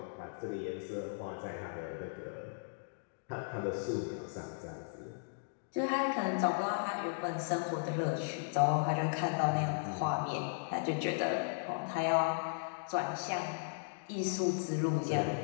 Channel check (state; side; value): silent; right; digital silence